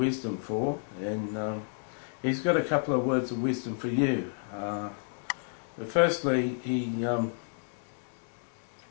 for, and He's got a couple of words of wisdom for you. Firstly, He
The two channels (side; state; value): right; silent; digital silence